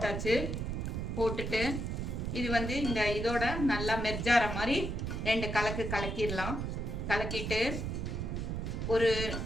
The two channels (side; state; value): right; noise; rumble, 3 dB below the sound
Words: போட்டுட்டு இது வந்து இந்த இதோட நல்லா மெர்ஜார மாதிரி 2 கலக்கிடலாம். கலக்கிட்டு ஒரு